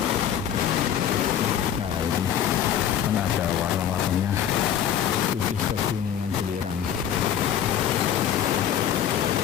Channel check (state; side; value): quieter; right; 9.8 dB